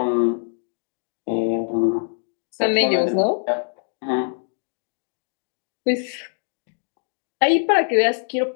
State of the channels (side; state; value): right; silent; digital silence